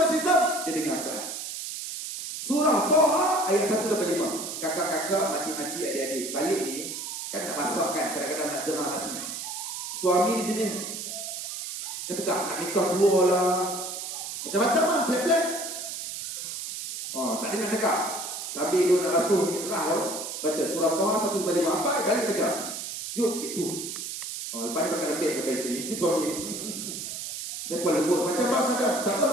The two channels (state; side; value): noise; right; hiss, 6 dB below the sound